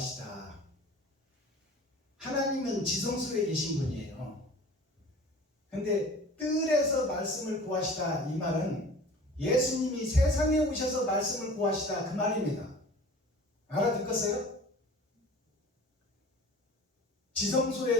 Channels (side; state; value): both; normal; correlation 0.42